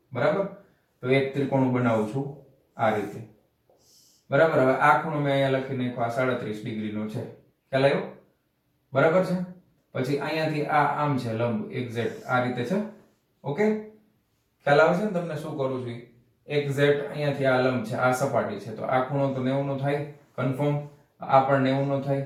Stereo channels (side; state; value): both; identical; correlation 1.00